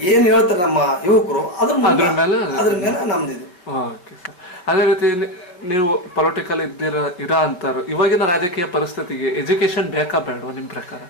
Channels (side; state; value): right; late; 5.4 ms